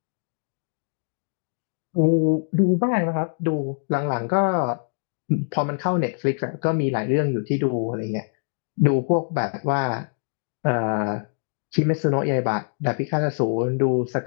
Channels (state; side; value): silent; right; 62 dB below the other